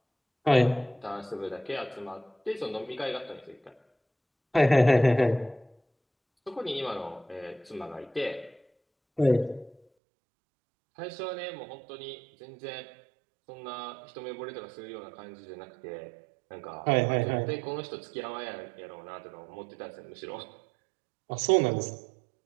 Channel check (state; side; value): drops out; left; at 9.8 s